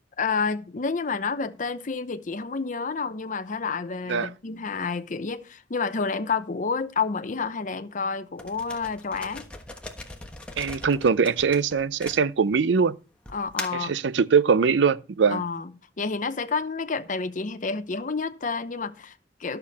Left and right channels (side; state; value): both; normal; correlation -0.08